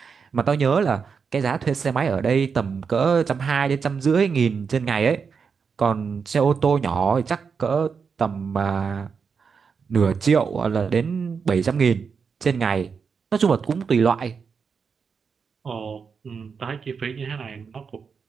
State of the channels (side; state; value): left; quieter; 5.8 dB